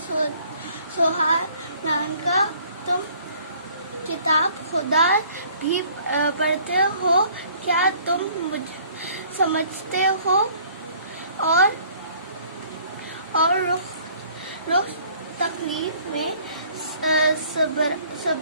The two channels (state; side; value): inverted; both; correlation -0.56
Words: حالانکہ تم کتاب خدا بھی پڑھتے ہو۔ کیا تم سمجھتے ہو اور روز تکلیف میں